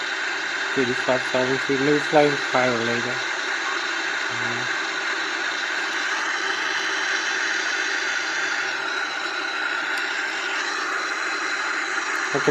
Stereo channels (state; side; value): identical; both; correlation 1.00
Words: 35,000 feet, maybe fly higher later. I